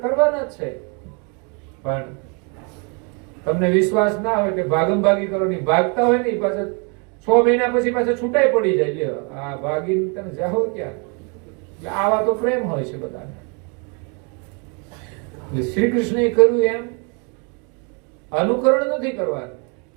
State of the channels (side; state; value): left; quieter; 35.0 dB